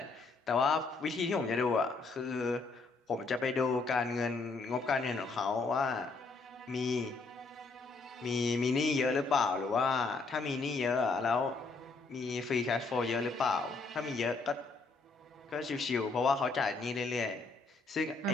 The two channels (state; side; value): quieter; right; 3.9 dB